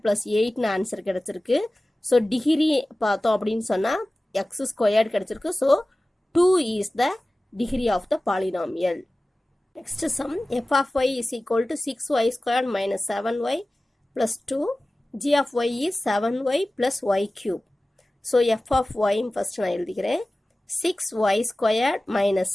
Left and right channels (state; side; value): normal; both; correlation 0.97